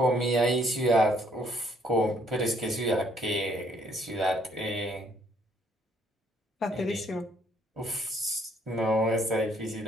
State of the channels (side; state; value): both; normal; correlation 0.66